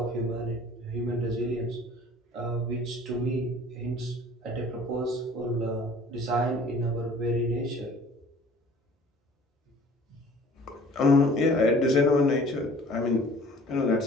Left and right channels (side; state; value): both; normal; correlation 0.50